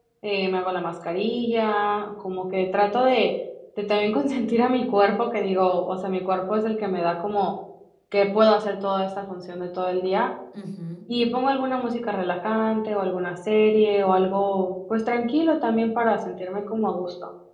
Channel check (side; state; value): both; identical; correlation 1.00